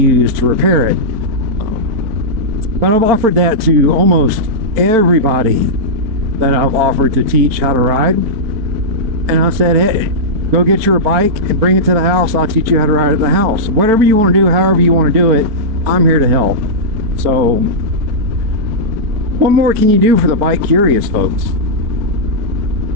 to repair it. But I've offered that to almost everybody that I've offered to teach how to ride. And I said, hey, go get your bike and bring it to the house. I'll teach you how to ride at the house. Whatever you want to do, however you want to do it, I'm here to help. So what more can you do for the bike curious folks?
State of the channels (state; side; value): late; left; 4.5 ms